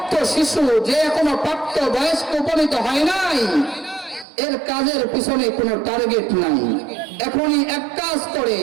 শিশু, যে এখনো প্রাপ্ত বয়স্ক উপনীত হয় নাই, এর কাজের পিছনে কোনো টার্গেট নাই। এখনই এক কাজ করে,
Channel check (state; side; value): drops out; left; at 4.2 s